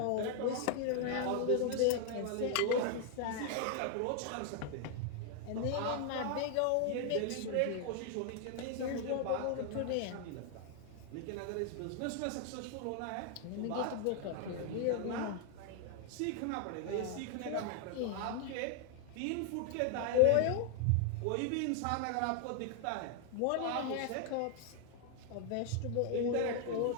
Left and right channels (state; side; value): different; both; correlation 0.00